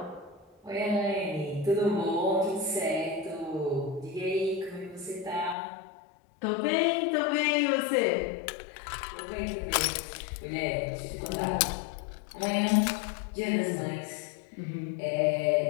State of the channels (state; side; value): drops out; right; at 5.6 s